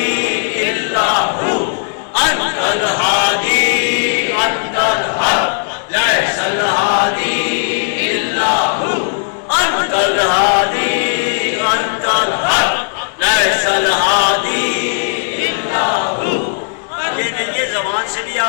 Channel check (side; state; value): right; silent; 66 dB below the other